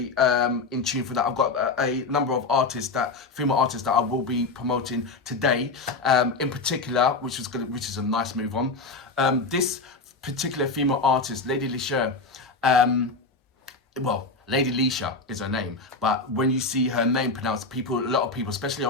in tune for that. I've got a number of female artists that I will be promoting today, in particular, which is a nice move on. This particular female artist, Lady LESHURR, Lady LESHURR is her name, but when you see her name pronounced, a lot of people, especially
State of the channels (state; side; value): quieter; right; 3.8 dB